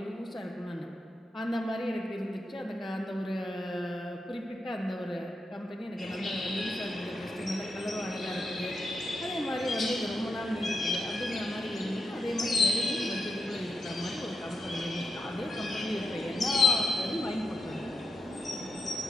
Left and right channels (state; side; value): normal; both; correlation 0.84